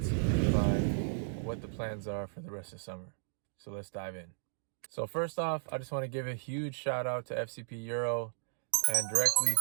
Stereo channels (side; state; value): left; silent; digital silence